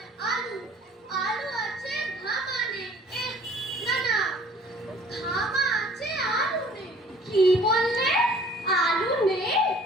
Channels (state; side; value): normal; both; correlation 0.53